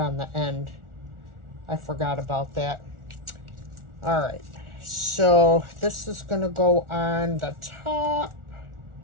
the end. I forgot about that. All right, so this is going to go on the top.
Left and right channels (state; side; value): late; left; 1.4 ms